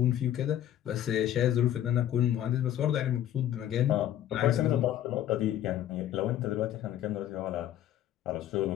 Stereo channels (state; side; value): quieter; right; 11.6 dB